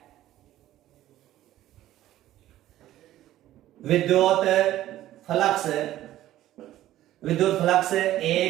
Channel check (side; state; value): left; quieter; 13.9 dB